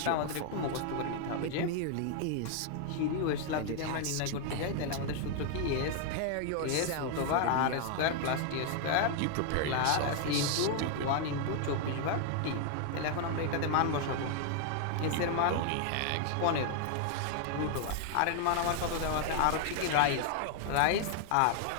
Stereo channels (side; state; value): both; different; correlation 0.00